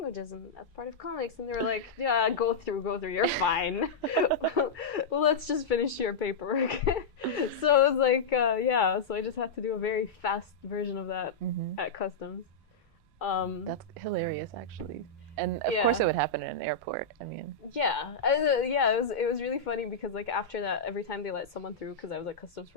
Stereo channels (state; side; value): quieter; right; 3.7 dB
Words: and that's part of comics. And they were like, yeah, go through, you're fine. Well, let's just finish your paperwork. So it was like, yeah, so I just had to do a very fast version of that at customs. That's hilarious, actually. And of course it would happen in an airport. I mean, it was really funny because like after that, every time they let someone through, because I was at customs